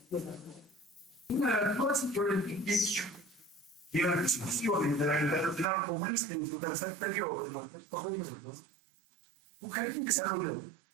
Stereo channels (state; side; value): drops out; left; at 5.7 s